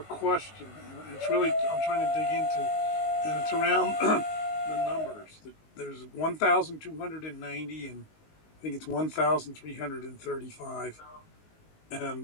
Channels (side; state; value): right; late; 19 ms